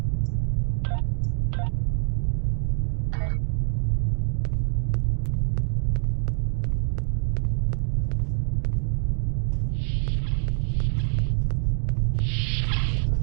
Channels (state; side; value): silent; left; digital silence